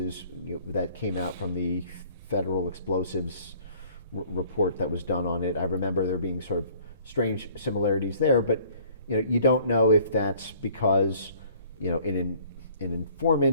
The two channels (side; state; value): both; inverted; correlation -0.55